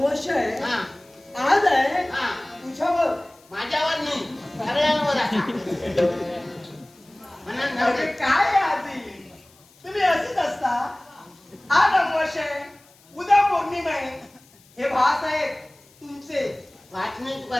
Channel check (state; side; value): noise; left; hiss, 29 dB below the sound